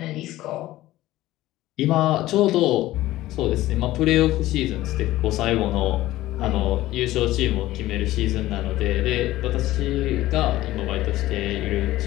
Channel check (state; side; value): quieter; right; 16.1 dB